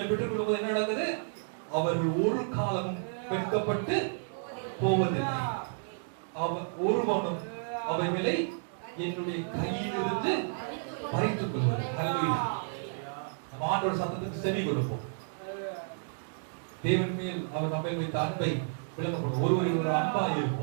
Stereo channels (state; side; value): silent; left; digital silence